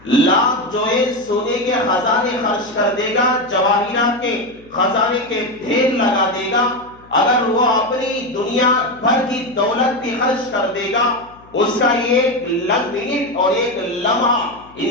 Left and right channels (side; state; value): left; noise; hum, 26 dB below the sound